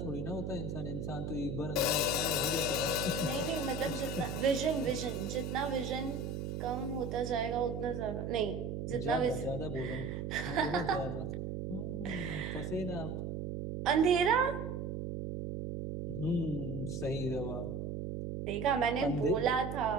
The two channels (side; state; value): right; noise; hum, 4 dB below the sound